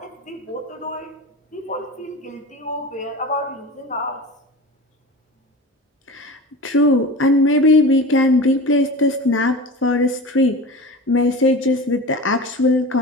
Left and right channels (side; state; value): both; normal; correlation 0.32